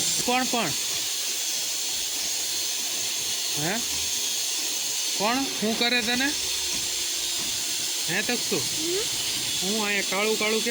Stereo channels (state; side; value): noise; right; hiss, 13 dB below the sound